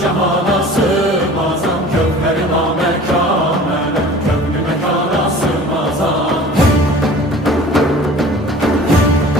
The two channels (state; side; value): normal; both; correlation 0.44